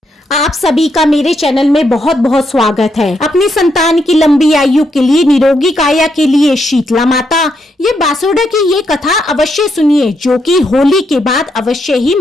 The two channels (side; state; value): both; normal; correlation 0.79